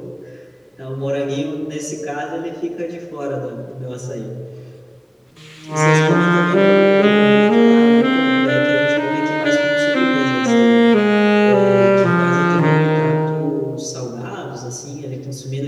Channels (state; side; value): identical; both; correlation 1.00